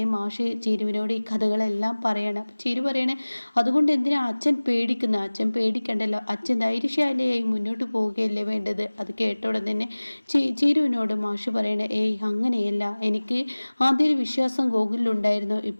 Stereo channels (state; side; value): inverted; both; correlation -1.00